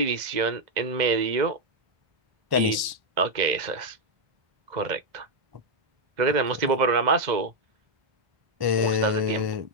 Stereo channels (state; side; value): late; left; 1.1 ms